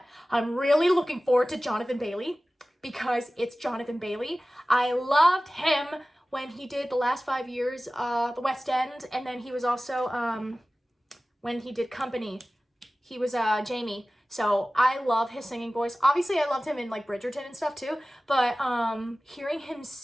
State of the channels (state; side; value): normal; both; correlation 0.97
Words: I'm really looking forward to Jonathan Bailey because it's Jonathan Bailey. I loved him when he did the last 5 years, the West End, and then he was also, when he did Company, he was Jamie. So I love his singing voice. Obviously, I loved him in like Bridgerton and stuff too, but hearing him